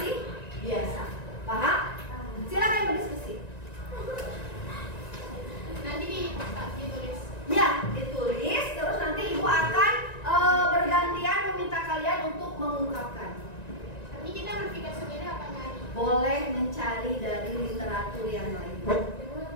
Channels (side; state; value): right; late; 1.9 ms